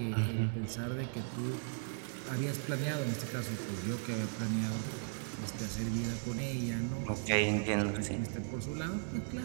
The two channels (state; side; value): silent; left; digital silence